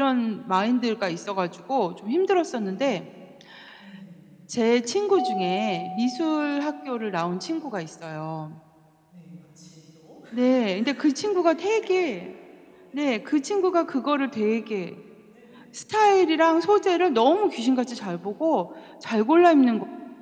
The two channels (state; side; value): identical; both; correlation 1.00